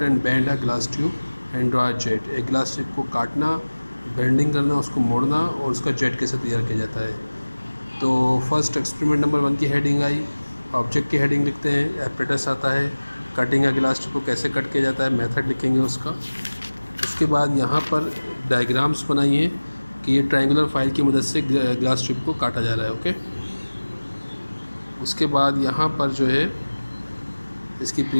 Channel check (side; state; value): both; inverted; correlation -1.00